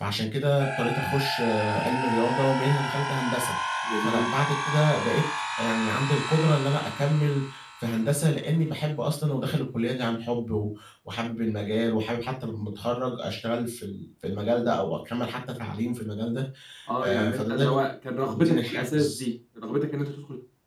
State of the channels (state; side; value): identical; both; correlation 1.00